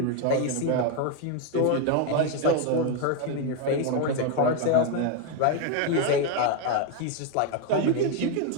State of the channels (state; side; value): different; both; correlation 0.01